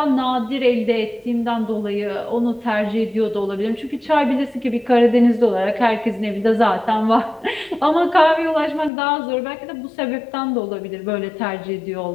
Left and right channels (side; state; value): right; drops out; at 8.9 s